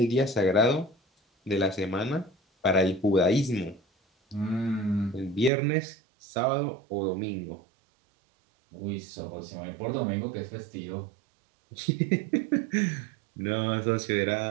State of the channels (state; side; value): drops out; left; at 5.5 s